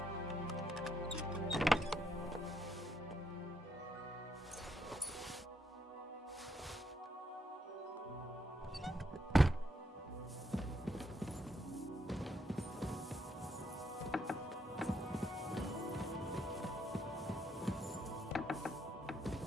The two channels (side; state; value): both; normal; correlation 0.77